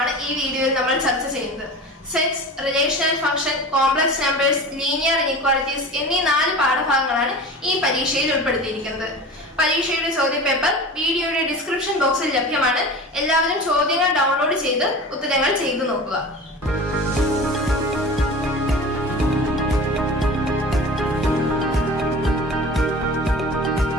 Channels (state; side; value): normal; both; correlation 0.35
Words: ഈ വീഡിയോയിൽ നമ്മൾ ചർച്ച ചെയ്യുന്നത്. Sets, relational function, complex numbers, linear inequalities എന്നീ 4 പാഠഭാഗങ്ങളാണ് ഈ പരീക്ഷയിൽ ഉൾപ്പെടുത്തിയിരിക്കുന്നത്. പരീക്ഷയുടെ ചോദ്യപേപ്പർ വീഡിയോയുടെ ഡിസ്ക്രിപ്ഷൻ ബോക്സിൽ ലഭ്യമാണ്. എല്ലാവരും ചോദ്യങ്ങൾ ഡൗൺലോഡ് ചെയ്ത് ഉത്തരങ്ങൾ ചെയ്തു നോക്കുക.